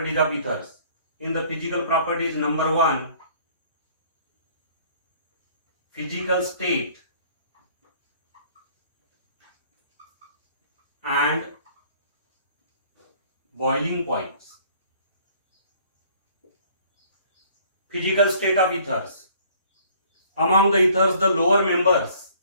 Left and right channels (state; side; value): inverted; both; correlation -0.56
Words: of ethers. In the physical properties, number one, physical state and boiling points. Physical state of ethers. Among the ethers, the lower members,